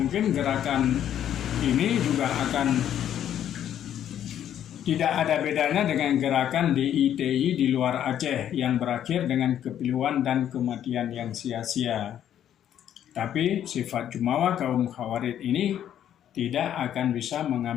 gerakan ini juga akan tidak ada bedanya dengan gerakan DITI di luar Aceh yang berakhir dengan kepiluan dan kematian yang sia-sia. Tapi sifat jumawa kaum Khawarid ini tidak akan bisa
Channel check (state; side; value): quieter; right; 10.4 dB